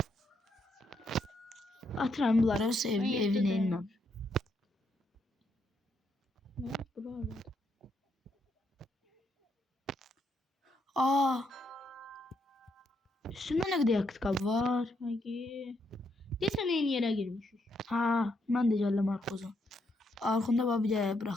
Atıram bunları o ev, Ben evin yedim. elinden. Nə? Buralar. Üstünde ne kadar yakıt kabı var. Hagi. Desən eyni yerə girmişik. Ben de geldim arkoza. Arkında bir de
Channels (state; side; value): normal; both; correlation 0.77